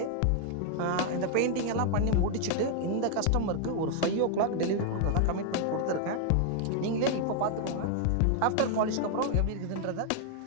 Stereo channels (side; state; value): both; different; correlation 0.00